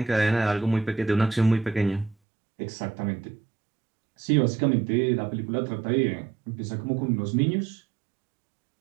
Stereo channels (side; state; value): left; drops out; at 2.1 s